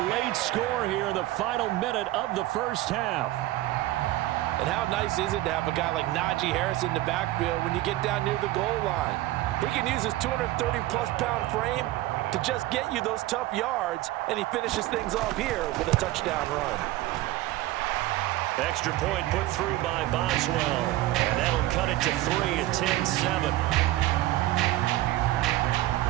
late score here in the final minute of the first half. And how nice is it to have a guy like Najee Harris in the backfield when you get down near the goal line? He can use his 230-plus pound frame to just get you those tough yards, and he finishes things off here with a touchdown run. Extra point put through by Boswell, and that'll cut it to 3 at 10-7.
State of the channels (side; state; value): left; quieter; 16.5 dB